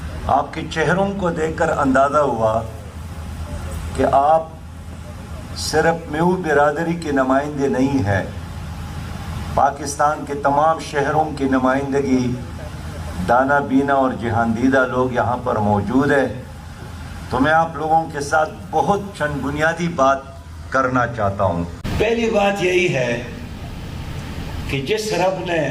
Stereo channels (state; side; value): identical; both; correlation 1.00